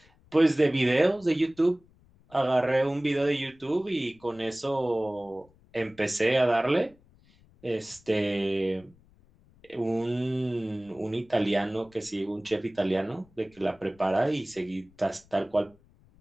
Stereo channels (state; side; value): noise; left; rumble, 29 dB below the sound